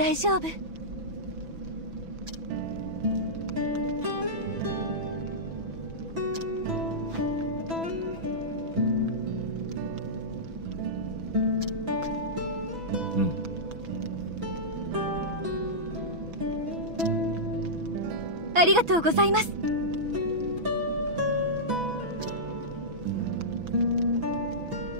丈夫。ありがとうございます。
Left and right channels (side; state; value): left; late; 6.0 ms